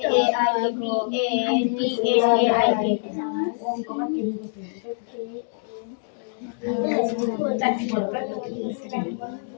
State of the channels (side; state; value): right; silent; digital silence